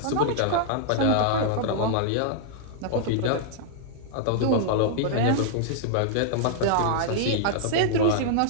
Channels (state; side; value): different; both; correlation -0.01